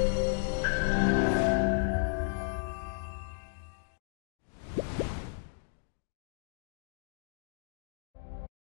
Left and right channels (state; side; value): silent; right; digital silence